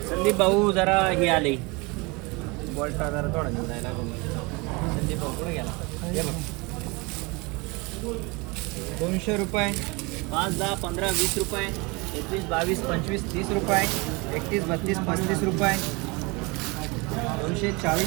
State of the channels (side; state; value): left; quieter; 26.9 dB